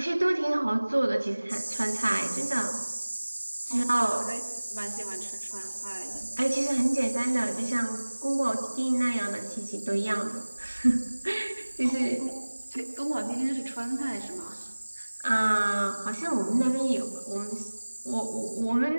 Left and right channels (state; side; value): inverted; both; correlation -1.00